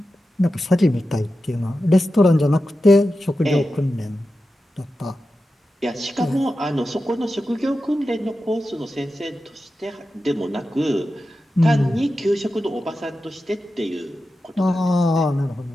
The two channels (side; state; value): both; normal; correlation 0.92